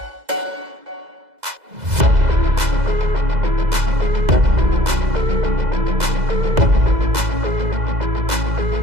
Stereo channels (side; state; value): left; late; 2.0 ms